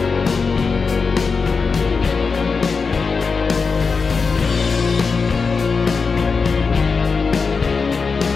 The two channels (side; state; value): right; quieter; 4.9 dB